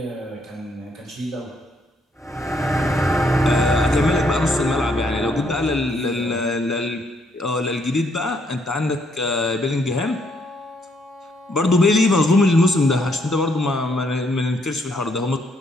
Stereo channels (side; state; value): both; normal; correlation 0.72